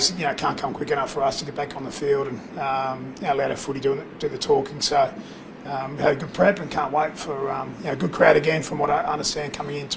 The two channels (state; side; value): identical; both; correlation 1.00